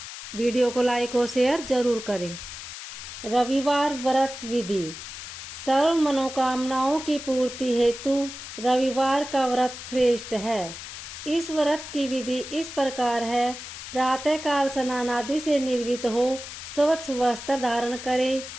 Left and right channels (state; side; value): noise; left; hiss, 11 dB below the sound